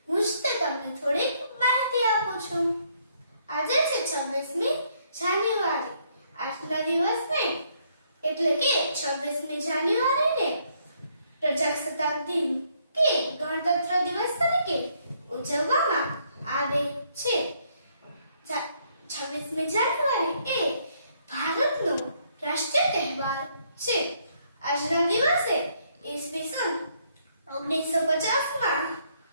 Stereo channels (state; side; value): inverted; both; correlation -0.70